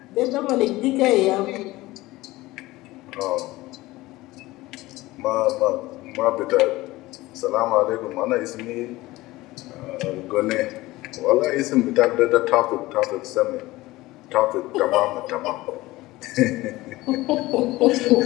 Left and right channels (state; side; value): quieter; right; 18.9 dB